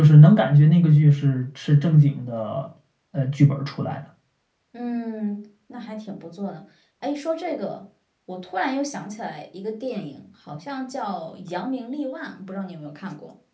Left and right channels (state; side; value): identical; both; correlation 1.00